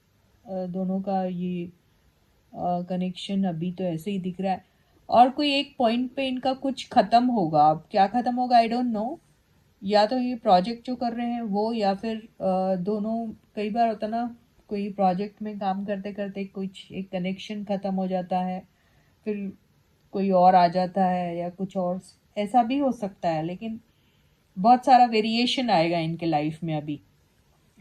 दोनों का ये कनेक्शन अभी तो ऐसे ही दिख रहा है। और कोई एक पॉइंट पे इनका कुछ ख़त्म होगा। अब क्या ख़त्म होगा आई डोंट नो। या तो ये प्रोजेक्ट जो कर रहे हैं वो, या फिर दोनों। कई बार होता ना, कोई प्रोजेक्ट में काम करते करते कुछ एक कनेक्शन ख़त्म हो जाता है, फिर कोई और आ जाता है या कुछ और ऐसा भी हो सकता है। लेकिन बहुत सारा वेरिएशन आएगा इनके लाइफ में अभी,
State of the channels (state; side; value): identical; both; correlation 1.00